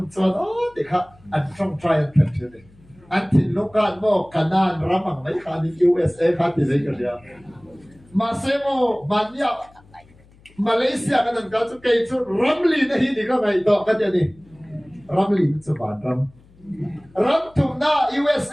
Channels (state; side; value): noise; left; hum, 27 dB below the sound